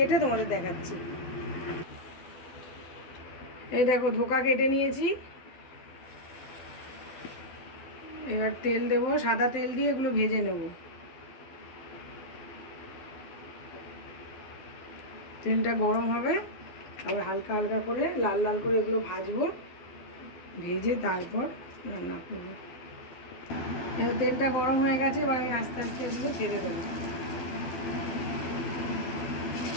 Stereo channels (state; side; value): late; right; 12 ms